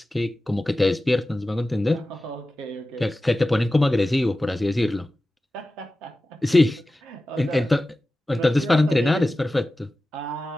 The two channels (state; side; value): normal; both; correlation 0.95